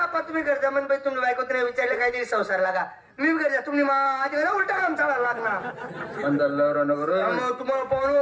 तुम्ही करता म्हण बाई तुम्ही बायको नाही विचारले काहीतरी संसार लागा मी करता तुम्ही माझ्या घरा उलटा काम चालायला लागणार तुम्हाला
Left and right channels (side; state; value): both; identical; correlation 1.00